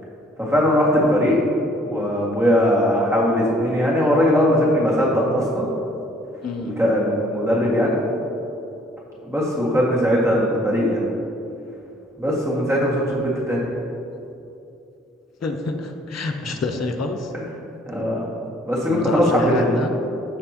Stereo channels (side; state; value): both; normal; correlation 0.60